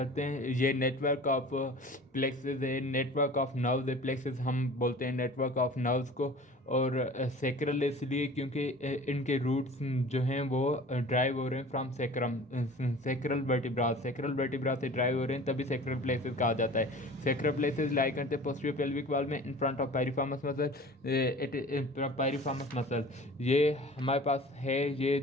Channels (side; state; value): both; normal; correlation 0.42